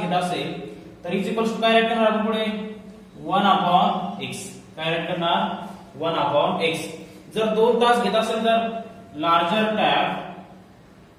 असेल तर इज इक्वल्स टू काय राईट करणार आपण पुढे 1/x. काय राईट करणार 1/x. जर 2 तास घेत असेल तर लार्जर टॅब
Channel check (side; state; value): both; identical; correlation 1.00